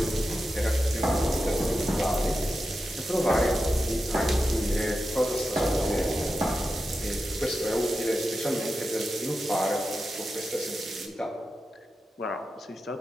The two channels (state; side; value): normal; both; correlation 0.90